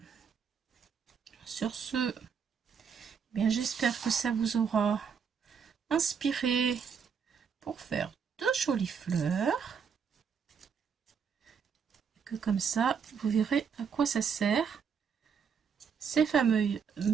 sur ce, bien j'espère que ça vous aura inspiré pour faire de jolies fleurs. Et que comme ça, vous verrez à quoi ça sert. Ces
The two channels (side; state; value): left; quieter; 6.6 dB